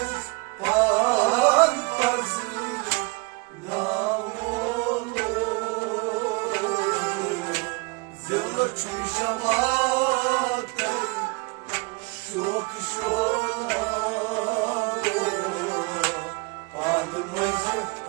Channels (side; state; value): left; quieter; 28.1 dB